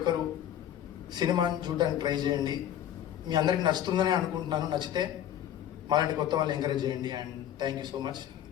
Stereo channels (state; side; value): quieter; right; 10.9 dB